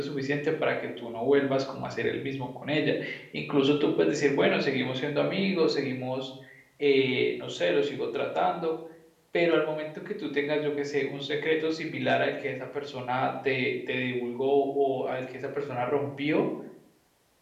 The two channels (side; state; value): both; identical; correlation 1.00